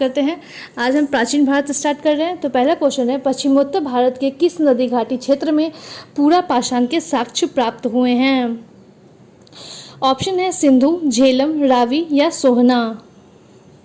हैं। आज हम प्राचीन भारत स्टार्ट कर रहे हैं। तो पहला क्वेश्चन है, पश्चिमोत्तर भारत के किस नदी घाटी क्षेत्र में पूरा पाषाण के साक्ष्य प्राप्त हुए हैं? ऑप्शन है सिंधु, झेलम, रावी या सोहना।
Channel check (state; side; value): identical; both; correlation 1.00